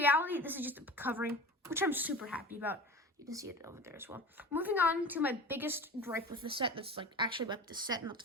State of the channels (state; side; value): normal; both; correlation 0.34